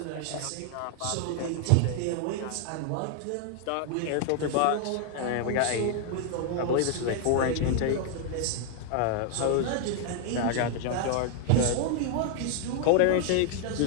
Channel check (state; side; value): different; both; correlation 0.00